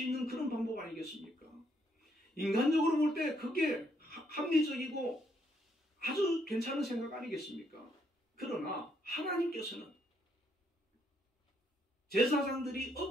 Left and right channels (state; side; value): normal; both; correlation 0.72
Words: 있는 그런 방법 아니겠습니까? 인간적으로 볼 때 그게 합리적이고 아주 괜찮은 생각 아니겠습니까? 그러나 하나님께서는 제사장들이